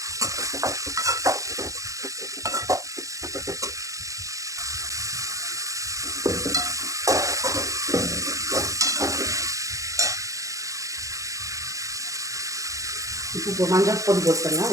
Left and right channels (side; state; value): left; late; 0.16 ms